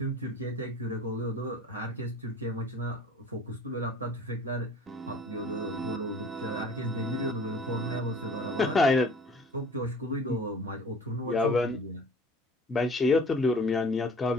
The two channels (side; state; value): both; normal; correlation 0.48